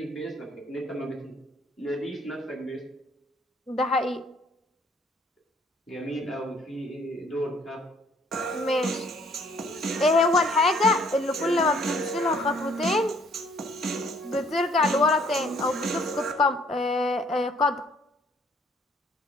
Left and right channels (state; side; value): normal; both; correlation 0.61